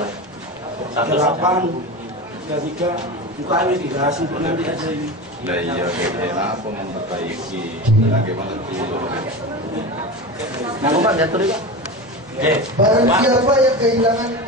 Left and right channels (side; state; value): both; normal; correlation 0.25